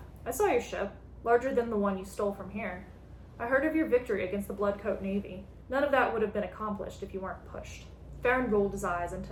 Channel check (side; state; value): both; identical; correlation 1.00